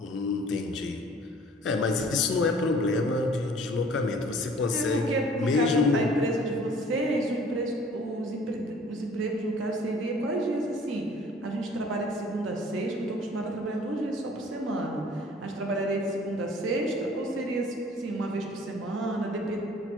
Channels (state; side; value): normal; both; correlation 0.53